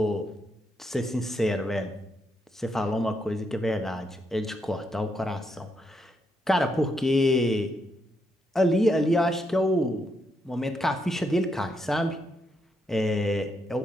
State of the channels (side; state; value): both; normal; correlation 0.79